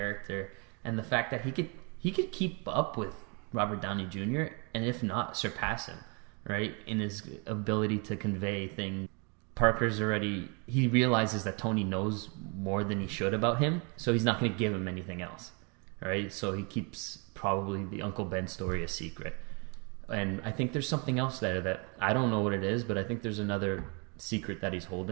and the fact that he could keep up with Robert Downey Jr. and if not surpass him, right, in his ability to convey things. Parker's he realizes that Tony knows more than he should about him, so he's not going to give him anything else, right? So he keeps probably the Uncle Ben story a secret. And I think there's something else there that I don't know what it is, but I think there's another secret that he's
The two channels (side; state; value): left; quieter; 34.0 dB